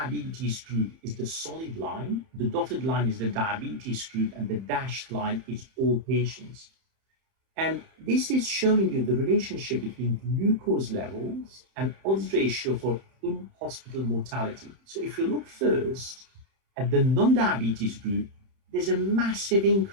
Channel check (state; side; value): late; left; 30 ms